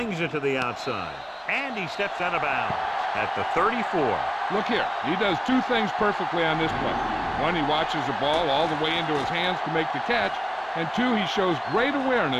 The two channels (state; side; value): identical; both; correlation 1.00